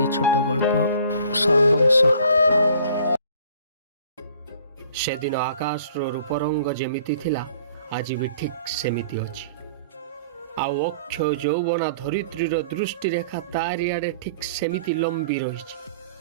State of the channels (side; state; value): both; inverted; correlation -0.52